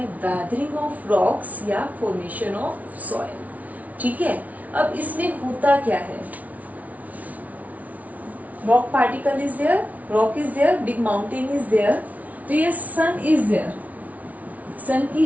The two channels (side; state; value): left; late; 0.071 ms